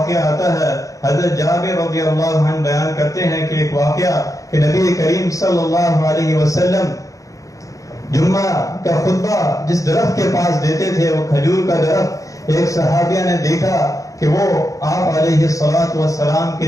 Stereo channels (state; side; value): late; right; 0.16 ms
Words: آتا ہے، حضرت جابر رضی اللہ عنہ بیان کرتے ہیں کہ ایک واقعہ کہ نبی کریم صلی اللہ علیہ وسلم جمعہ کا خطبہ جس درخت کے پاس دیتے تھے، وہ کھجور کا درخت، ایک صحابیہ نے دیکھا کہ وہ آپ علیہ السلام کے